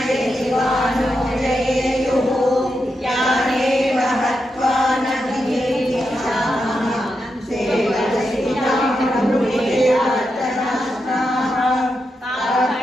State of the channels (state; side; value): normal; both; correlation 0.86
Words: यदिवानो जयेयुः यानेव हत्वा न कीर्तिशामः सेवसितामृतेऽर्थनास्ताः